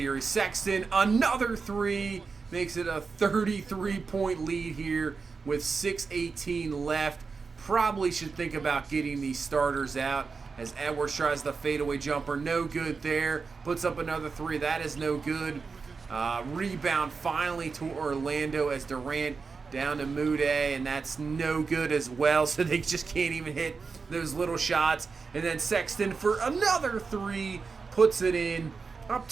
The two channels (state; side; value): quieter; left; 4.8 dB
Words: Sexton, another three, makes it a 33-point lead here with 6:18 left. Probably should think about getting these starters out as Edwards tries the fadeaway jumper. No good there. Puts up another three. That is no good. Rebound finally to Orlando as Durant down to Mude, and that's no good as well, so they just can't even hit those little shots. And then Sexton for another three, puts it in, up